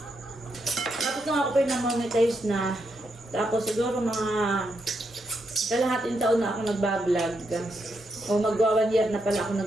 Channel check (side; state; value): both; normal; correlation 0.81